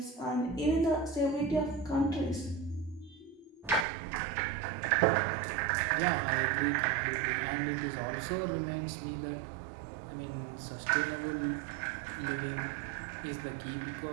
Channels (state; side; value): drops out; left; at 3.9 s